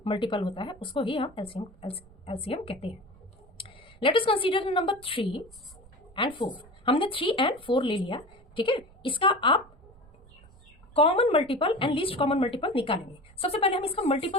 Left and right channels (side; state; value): right; noise; rumble, 25 dB below the sound